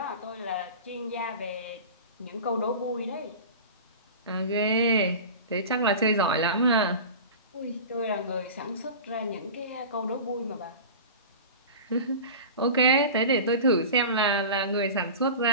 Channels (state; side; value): inverted; both; correlation -0.33